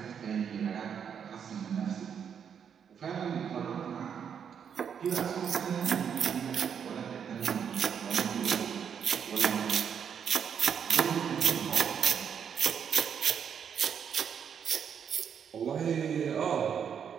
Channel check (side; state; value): left; quieter; 7.7 dB